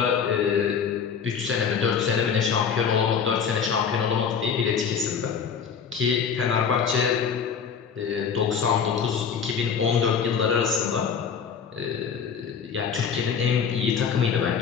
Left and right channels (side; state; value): right; quieter; 6.8 dB